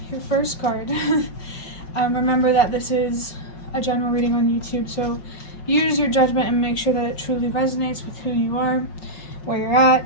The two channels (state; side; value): late; right; 5.3 ms